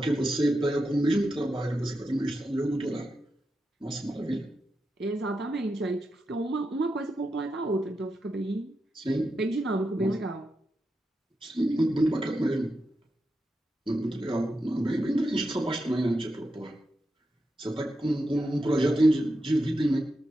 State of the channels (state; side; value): normal; both; correlation 0.88